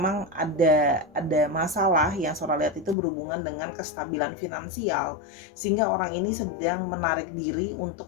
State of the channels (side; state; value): right; drops out; at 3.0 s